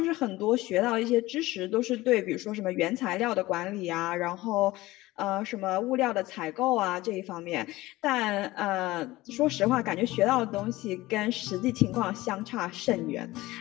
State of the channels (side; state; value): right; quieter; 18.6 dB